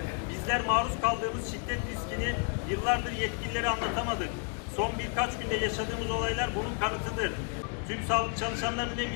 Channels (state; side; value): quieter; right; 38.8 dB